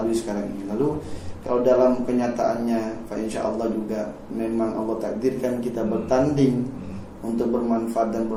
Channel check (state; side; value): identical; both; correlation 1.00